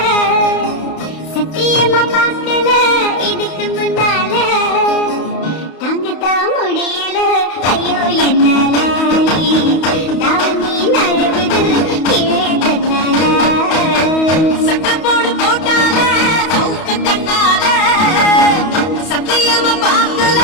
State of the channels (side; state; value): right; late; 31 ms